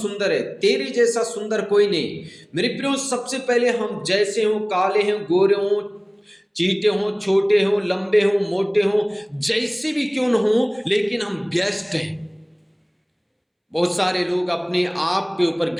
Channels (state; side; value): identical; both; correlation 1.00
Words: है। तेरे जैसा सुंदर कोई नहीं। मेरे प्रियो, सबसे पहले हम जैसे हो, काले हो, गोरे हो, चीटे हो, छोटे हो, लंबे हो, मोटे हो, जैसे भी क्यों न हो, लेकिन हम बेस्ट हैं। बहुत सारे लोग अपने आप के ऊपर